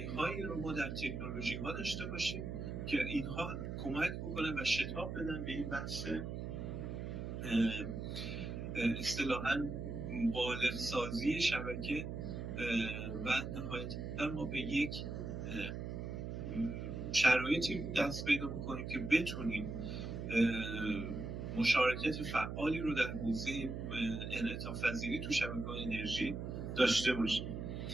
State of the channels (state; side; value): noise; right; hum, 5 dB below the sound